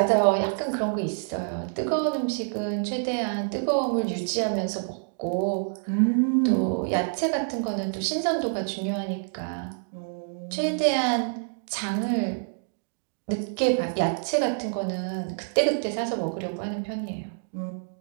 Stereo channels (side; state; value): left; silent; digital silence